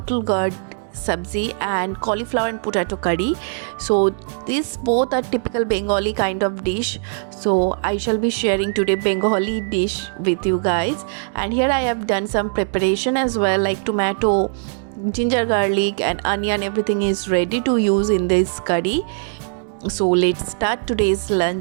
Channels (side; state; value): left; silent; digital silence